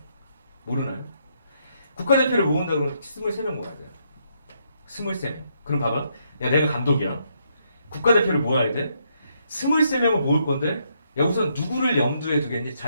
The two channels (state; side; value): inverted; both; correlation -0.75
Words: 모르나요? 국가대표를 모은다 그러면 23명 모아야 돼요. 23명. 그럼 봐봐. 야, 내가 감독이야. 국가대표를 모아야 돼. 23명을 모을 건데, 야, 우선 누구를 염두에 두겠니?